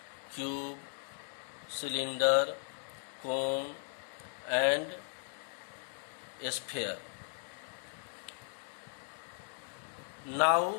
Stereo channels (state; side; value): silent; right; 53 dB below the other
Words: cube, cylinder, cone and sphere.